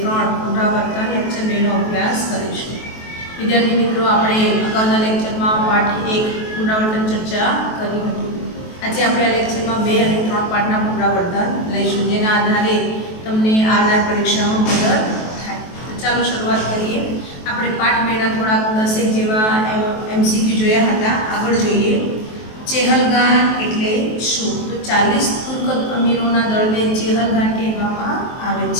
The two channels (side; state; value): right; late; 23 ms